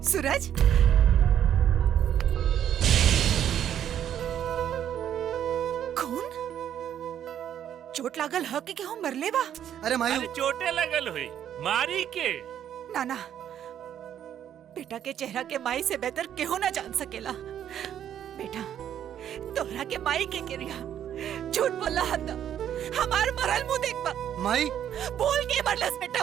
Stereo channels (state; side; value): quieter; left; 10.1 dB